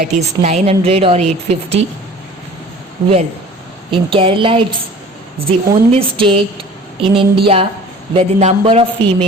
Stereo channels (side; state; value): both; normal; correlation 0.45